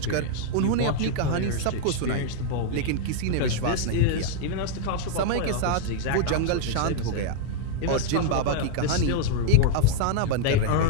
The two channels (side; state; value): both; different; correlation 0.00